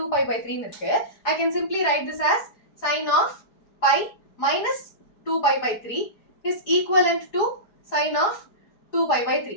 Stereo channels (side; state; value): right; late; 4.8 ms